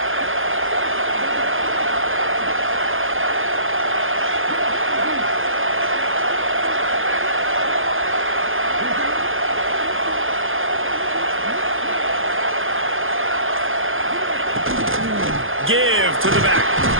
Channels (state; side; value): late; left; 0.59 ms